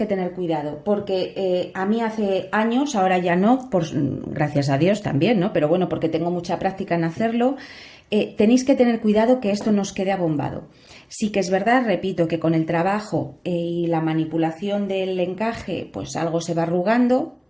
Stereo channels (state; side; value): identical; both; correlation 1.00